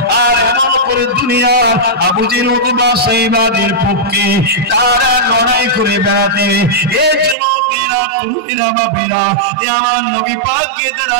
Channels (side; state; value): left; drops out; at 7.4 s